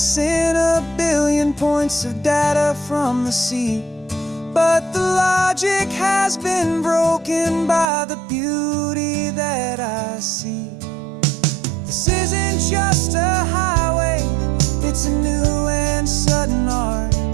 a billion points of data from the sea, but the logic has been broken by the beauty that I see. This isn't just a highway, it's a new and sudden art,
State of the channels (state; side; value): drops out; left; at 7.9 s